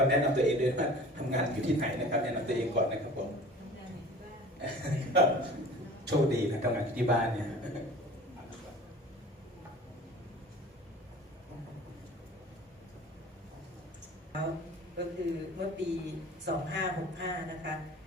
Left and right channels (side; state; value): both; normal; correlation 0.43